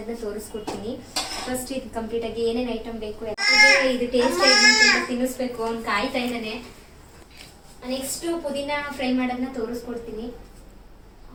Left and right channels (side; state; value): both; identical; correlation 1.00